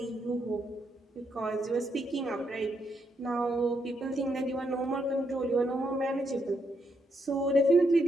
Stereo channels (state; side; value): normal; both; correlation 0.78